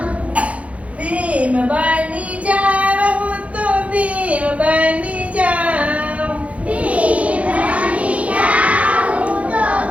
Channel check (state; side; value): late; left; 0.065 ms